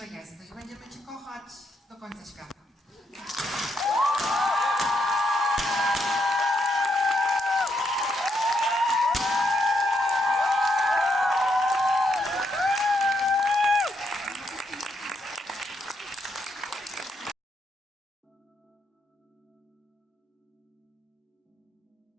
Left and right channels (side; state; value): both; normal; correlation 0.77